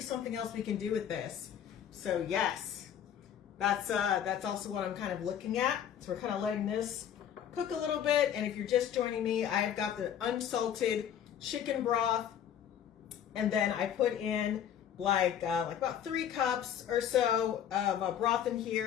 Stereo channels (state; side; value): quieter; right; 9.5 dB